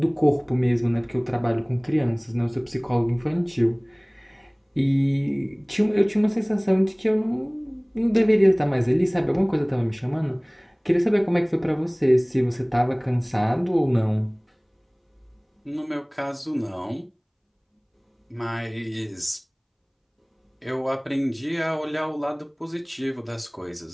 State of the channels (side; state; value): both; identical; correlation 1.00